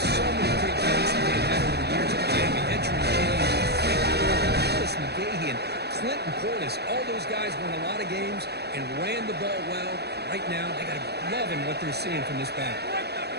many great games that they've had over the years of Miami. Entering James, Frank Gordon, Chris McGahee, and Clinton Portis. All those guys won a lot of games and ran the ball well. Right now, they got to love what they're seeing from this back.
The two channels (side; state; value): left; late; 0.48 ms